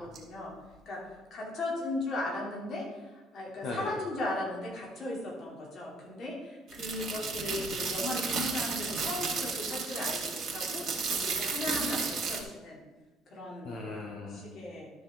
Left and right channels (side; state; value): both; normal; correlation 0.61